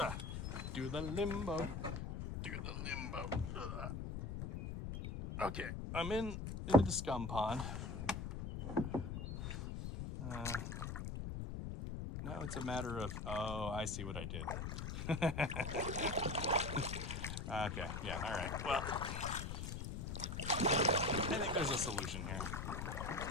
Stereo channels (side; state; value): left; noise; rumble, 4 dB below the sound